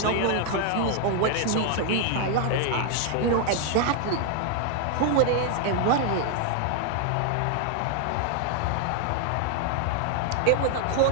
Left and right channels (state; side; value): different; both; correlation 0.00